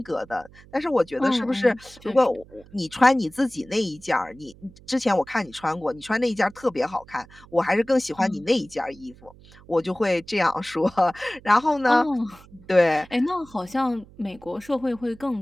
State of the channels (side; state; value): right; noise; hum, 23 dB below the sound